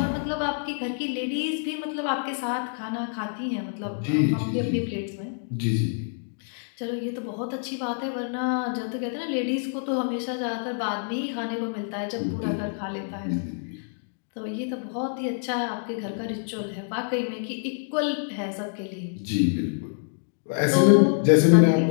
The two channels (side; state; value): right; silent; digital silence